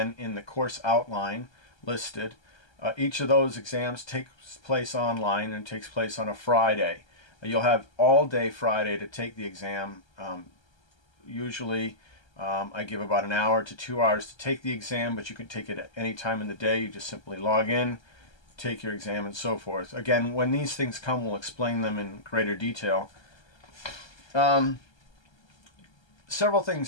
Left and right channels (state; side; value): late; right; 1.3 ms